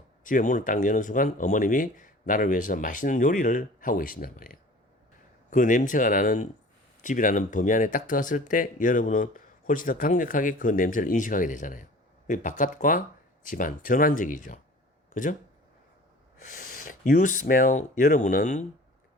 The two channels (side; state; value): both; normal; correlation 0.44